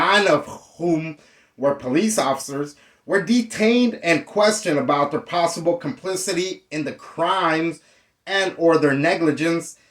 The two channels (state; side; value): identical; both; correlation 1.00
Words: of whom were police officers, were detained and questioned about their possible complicity in the crimes and or their negligence